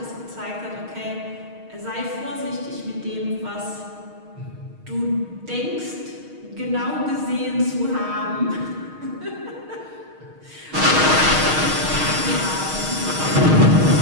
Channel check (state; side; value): late; left; 6.4 ms